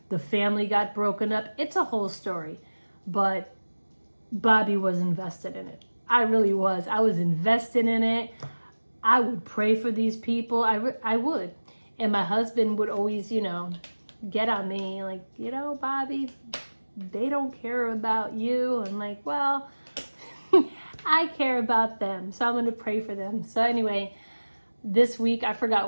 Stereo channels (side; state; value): both; inverted; correlation -1.00